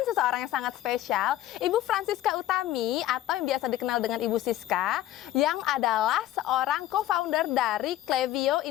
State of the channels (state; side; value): quieter; right; 13.8 dB